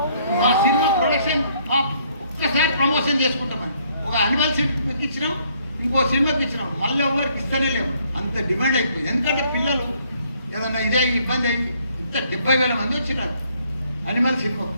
మా సినిమా ప్రొడక్షన్ ఒక్కసారి ప్రమోషన్ చేసుకుంటామని ఒక అనిమల్ సినిమాకి ఇచ్చినాం, ఇంకో సినిమాకి ఇచ్చినాం, మళ్ళీ ఎవరికి ఇస్తూనే లేవు. అంత డిమాండ్ అయిపోయింది. ఎందుకంటే పిల్లలు ఏదన్నా ఇదే ఇబ్బంది అయింది. ఇంత 70,000 మంది వచ్చినారు అనిమల్ సినిమా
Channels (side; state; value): both; inverted; correlation -0.66